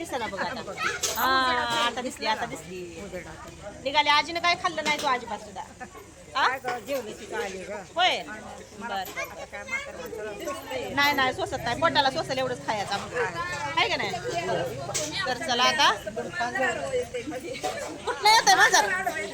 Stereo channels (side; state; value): both; identical; correlation 1.00